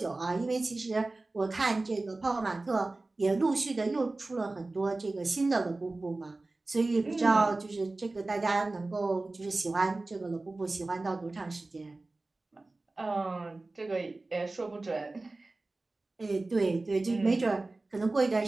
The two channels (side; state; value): left; quieter; 3.2 dB